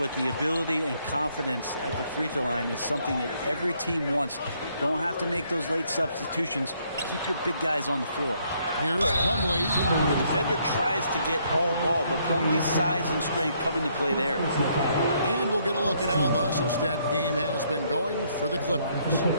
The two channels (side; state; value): both; inverted; correlation -0.70